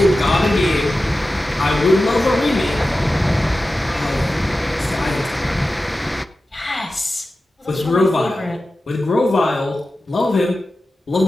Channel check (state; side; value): normal; both; correlation 0.94